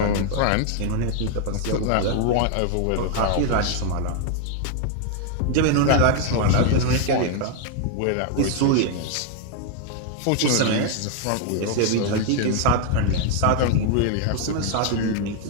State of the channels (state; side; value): different; both; correlation 0.00